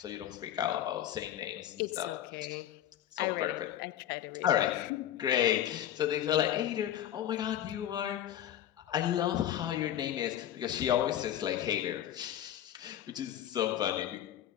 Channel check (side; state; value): right; quieter; 11.4 dB